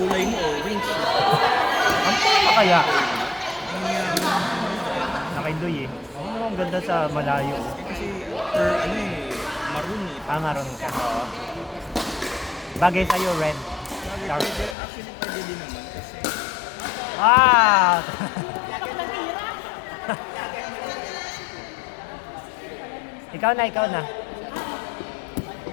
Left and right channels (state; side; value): drops out; right; at 14.8 s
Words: mo, orange. Ang tama kaya? Nakidoy eh. Ang ganda sa malayo. Kasi, maroon eh. Ah, maroon ka. Oo. Bagay sa'yo, red. Dark. Actually, pwede din naman kasi. Ah! Ikaw na, ikaw na.